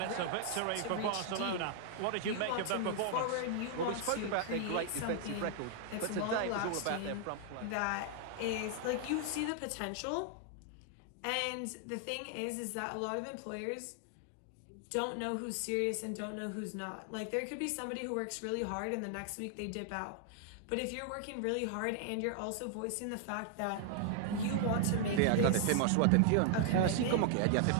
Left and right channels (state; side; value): different; both; correlation 0.00